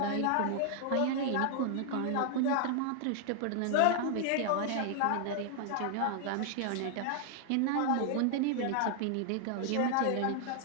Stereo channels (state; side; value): different; both; correlation 0.00